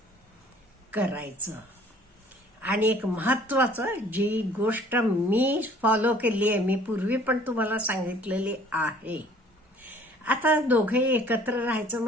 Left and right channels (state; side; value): normal; both; correlation 0.54